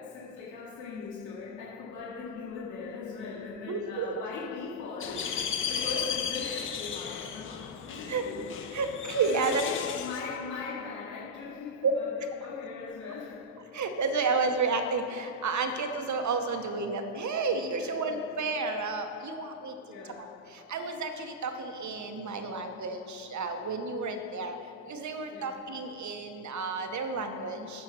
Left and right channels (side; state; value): both; normal; correlation -0.10